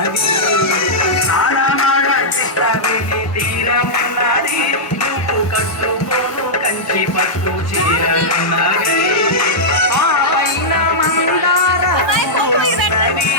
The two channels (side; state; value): right; late; 1.2 ms